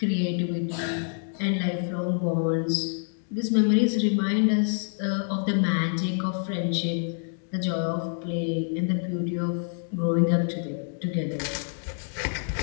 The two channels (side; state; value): right; silent; digital silence